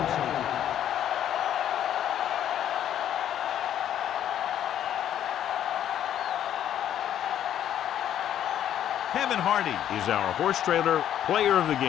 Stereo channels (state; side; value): quieter; right; 10.6 dB